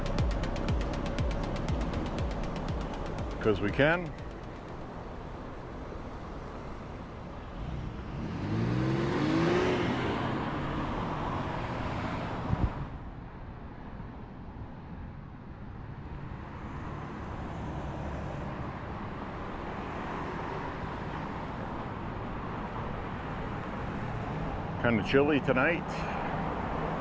because we can. Kind of chilly tonight.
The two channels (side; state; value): both; identical; correlation 1.00